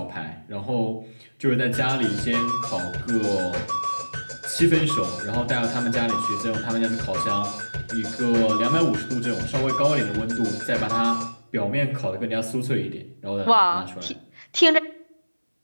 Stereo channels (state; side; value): inverted; both; correlation -1.00